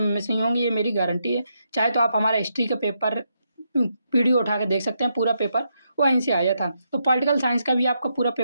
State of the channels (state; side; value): inverted; both; correlation -0.81